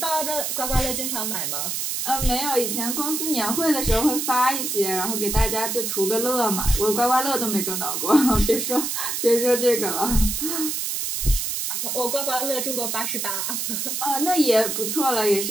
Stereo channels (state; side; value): noise; right; hiss, 2 dB below the sound